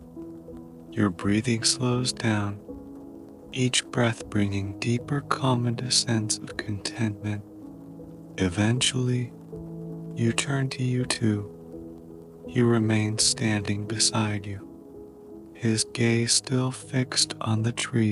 Your breathing slows down, each breath bringing deeper calm and a sense of contentment. Eventually, you turn to U2. He remains standing beside you, his gaze still fixed on the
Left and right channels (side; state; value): both; identical; correlation 1.00